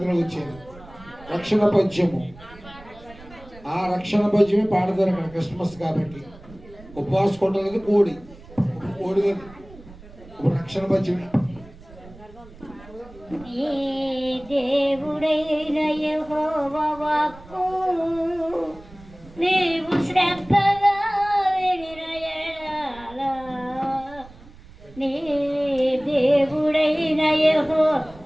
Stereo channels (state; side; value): noise; right; rumble, 20 dB below the sound